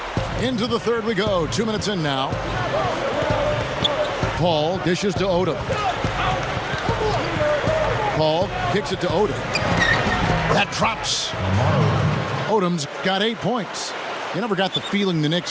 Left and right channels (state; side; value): identical; both; correlation 1.00